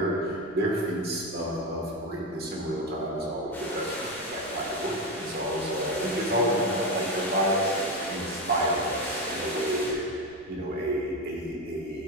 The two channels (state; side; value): noise; right; rumble, 25 dB below the sound